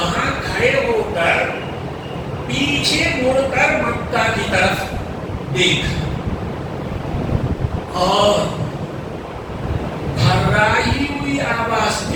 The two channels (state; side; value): identical; both; correlation 1.00